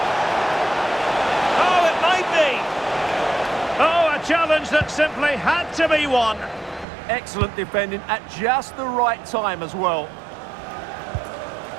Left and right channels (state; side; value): drops out; left; at 6.9 s